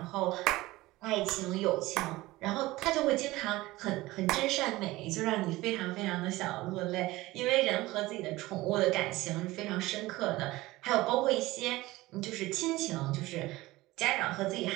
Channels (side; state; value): left; quieter; 19.0 dB